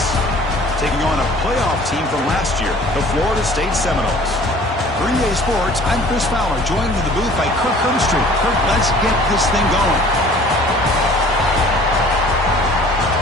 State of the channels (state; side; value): normal; both; correlation 0.50